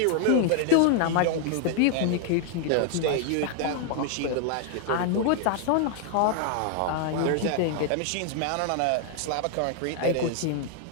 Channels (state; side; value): different; both; correlation 0.00